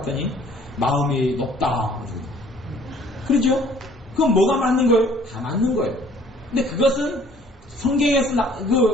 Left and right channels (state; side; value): normal; both; correlation 0.56